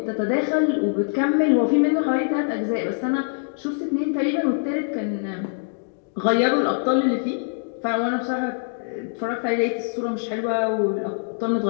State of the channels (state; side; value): silent; right; digital silence